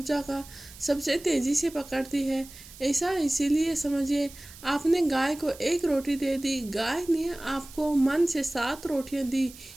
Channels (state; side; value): noise; right; hiss, 18 dB below the sound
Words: का सबसे तेजी से पकड़ती है। ऐसा इसीलिए समझिए आपने गाय को 1 रोटी दे दी, गाय ने आपको मन से 7 रोटियां दी।